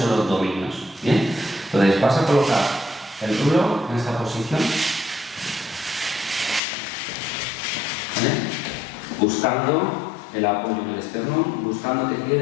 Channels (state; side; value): drops out; right; at 6.6 s